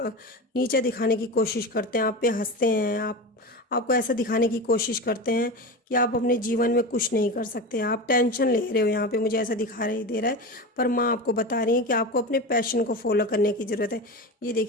दिखाने की कोशिश करते हैं, आप पे हंसते हैं, आपको ऐसा दिखाने की कोशिश करते हैं कि आप अपने जीवन में कुछ नहीं कर सकते, आप टेंशन ले रहे हो। यहाँ पे मुझे ऐसा दे रहा है। पर माँ आपको बता रही है कि आपको अपने पैशन को फॉलो करने की ज़रूरत है। ये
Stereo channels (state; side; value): normal; both; correlation 0.25